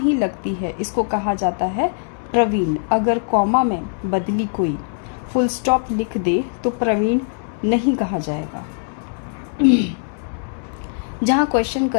लगती है, इसको कहा जाता है प्रवीण। अगर कॉमा में बदली कोई फुल स्टॉप लिख दे तो प्रवीण नहीं कहा जाएगा। जहाँ क्वेश्चन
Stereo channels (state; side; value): silent; right; digital silence